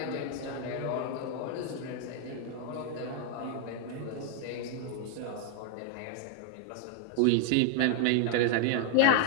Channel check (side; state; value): both; different; correlation 0.00